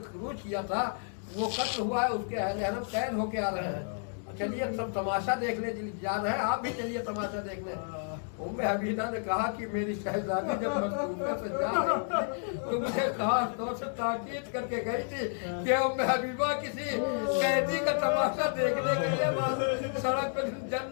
खुरूज किया था, वो कत्ल हुआ है, उसके अहल कैद होके आ रहे हैं, चलिए सब तमाशा देखने जा रहे हैं, आप भी चलिए तमाशा देखने। उम्मे हबीबा ने कहा कि मेरी शहजादी जब मजबूर से जा रही थी तो मुझे खास तौर से ताकीद करके गई थी कि उम्मे हबीबा किसी कैदी का तमाशा देखने के लिए सड़क पर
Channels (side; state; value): right; silent; 57 dB below the other